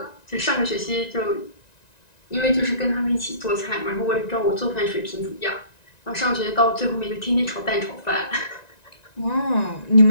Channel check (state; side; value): late; right; 1.9 ms